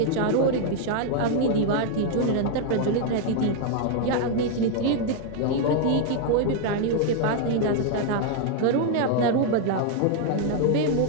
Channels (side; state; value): both; different; correlation 0.00